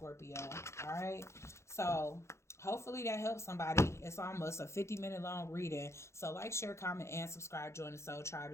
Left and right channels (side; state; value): right; late; 0.13 ms